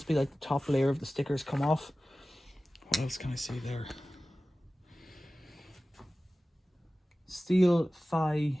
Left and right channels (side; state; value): both; normal; correlation 0.96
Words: be like the top layer of the stickers come off. What else can I see there? Steel Phi